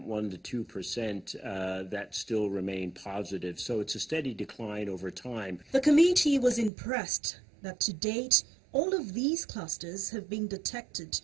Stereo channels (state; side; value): drops out; left; at 6.7 s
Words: 1 to 2% that still remain positive. So it's a steady decline over time. The committee was impressed that to date, all of these clusters have been detected